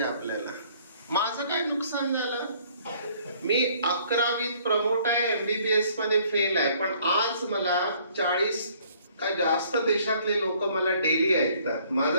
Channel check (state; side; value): inverted; both; correlation -0.60